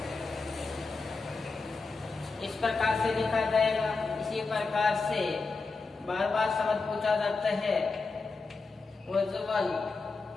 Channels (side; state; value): right; quieter; 4.1 dB